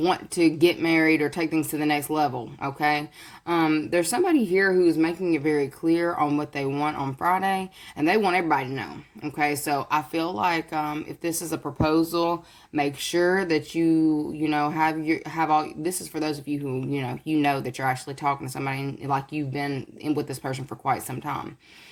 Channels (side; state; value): both; identical; correlation 1.00